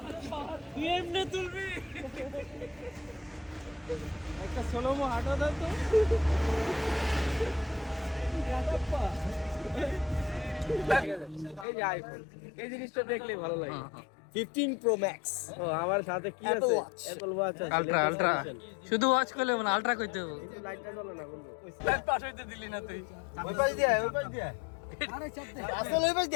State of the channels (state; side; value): drops out; right; at 11.7 s